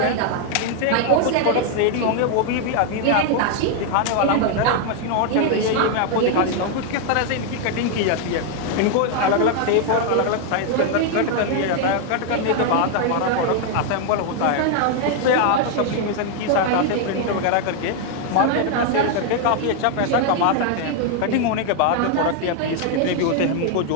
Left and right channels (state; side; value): different; both; correlation 0.00